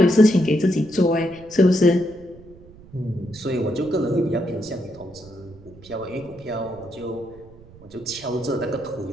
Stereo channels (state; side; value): noise; right; rumble, 22 dB below the sound